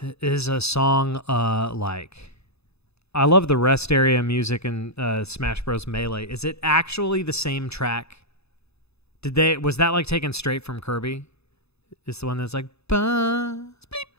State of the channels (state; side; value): late; right; 0.79 ms